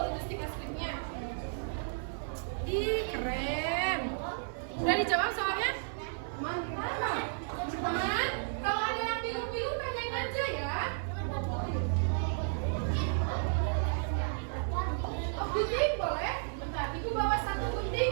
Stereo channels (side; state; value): left; silent; 56 dB below the other